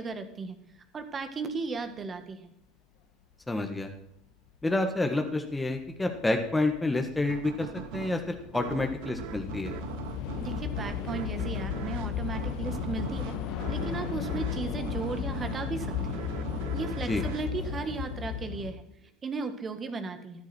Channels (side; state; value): both; normal; correlation 0.61